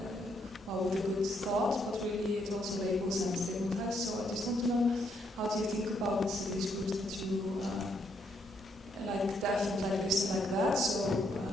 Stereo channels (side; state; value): both; normal; correlation 0.74